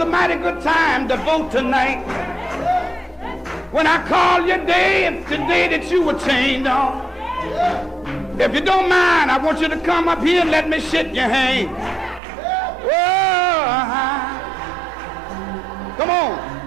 mighty good time to vote tonight. When I call your day, it's the day that you were chained on. If you don't mind, I want you to come up here and let me shake your hand. Oh, come on.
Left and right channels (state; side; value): drops out; left; at 12.2 s